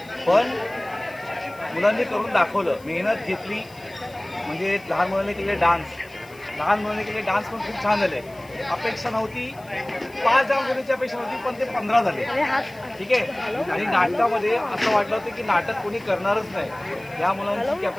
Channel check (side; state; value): left; noise; hiss, 25 dB below the sound